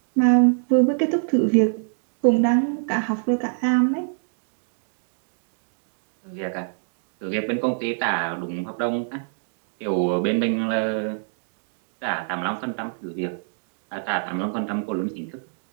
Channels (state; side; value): silent; left; digital silence